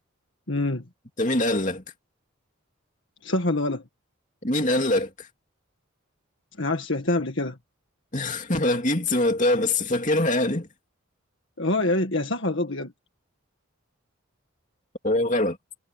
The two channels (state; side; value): normal; both; correlation 0.28